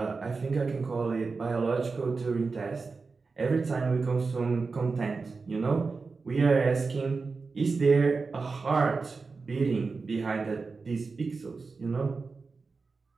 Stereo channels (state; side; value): quieter; left; 4.4 dB